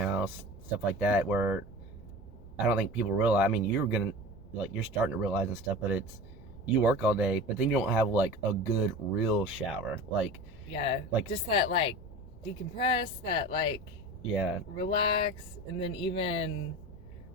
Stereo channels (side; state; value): left; noise; rumble, 21 dB below the sound